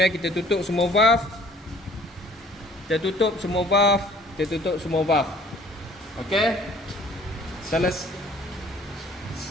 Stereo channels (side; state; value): both; normal; correlation 0.54